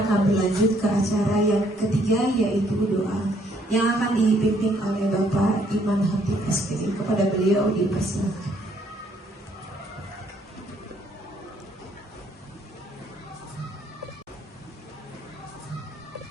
akan berlanjut ke acara yang ketiga yaitu doa yang akan dipimpin oleh Bapak Iman Hatip SPD. Kepada beliau dipersilakan.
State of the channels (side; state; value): both; normal; correlation 0.67